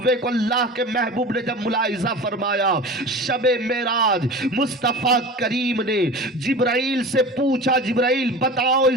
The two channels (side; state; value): both; normal; correlation 0.34